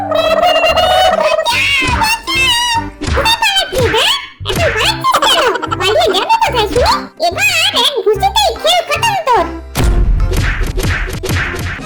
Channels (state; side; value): identical; both; correlation 1.00